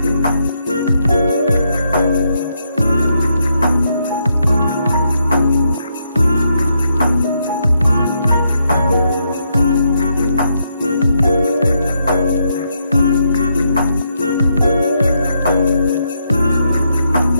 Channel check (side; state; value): both; inverted; correlation -0.79